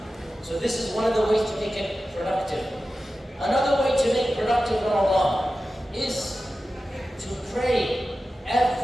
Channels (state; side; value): normal; both; correlation 0.94